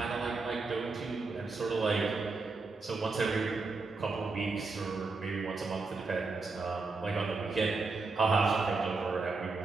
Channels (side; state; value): left; quieter; 3.9 dB